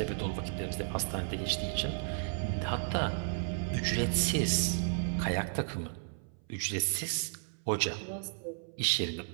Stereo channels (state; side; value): silent; left; 55 dB below the other